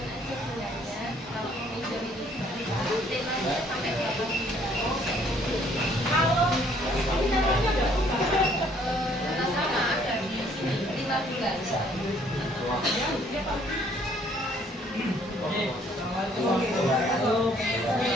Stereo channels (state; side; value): normal; both; correlation 0.62